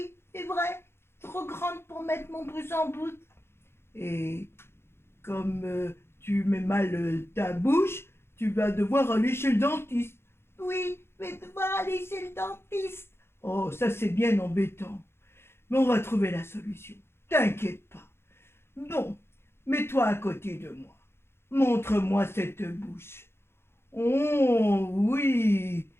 c'est vrai. Trop grande pour mettre mon pouce en bouche. Et comme tu mets mal ta bouche, tu vas devoir aller chez le dentiste. Oui, je vais devoir aller chez le dentiste. Oh, ça c'est bien embêtant. Mais on va trouver la solution. T'inquiète pas. Bon, mets-toi à côté de moi. Montre-moi cette bouche. Oh, oui.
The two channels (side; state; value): right; late; 0.12 ms